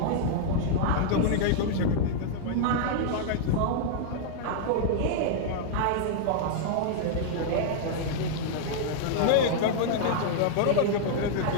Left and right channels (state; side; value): different; both; correlation -0.01